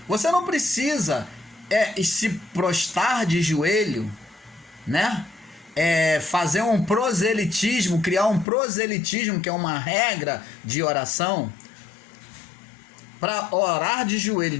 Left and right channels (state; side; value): drops out; right; at 8.5 s